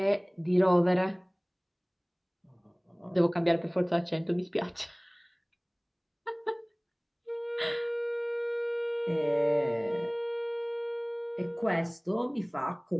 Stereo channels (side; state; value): both; identical; correlation 1.00